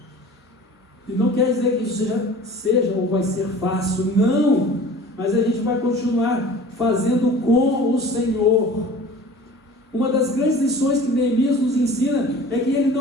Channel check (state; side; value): normal; both; correlation 0.43